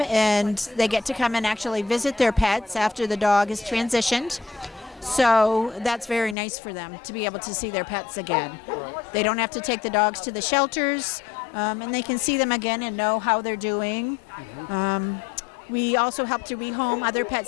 and they get to come and actually visit their pets after the dog is transitioned. So that's very nice for them to be able to see their pets again. They don't have to take the dogs to the shelters, and they can see them again and know how they're doing. We also help to rehome other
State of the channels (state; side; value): drops out; right; at 6.4 s